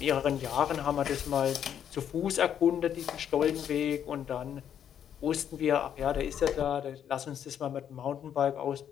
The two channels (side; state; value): right; quieter; 9.2 dB